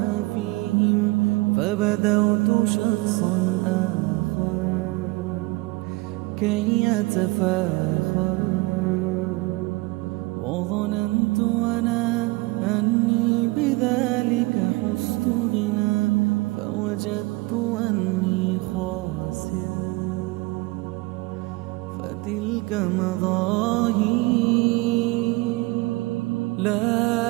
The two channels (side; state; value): left; quieter; 23.4 dB